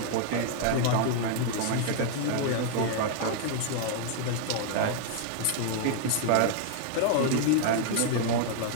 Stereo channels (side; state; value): both; different; correlation 0.00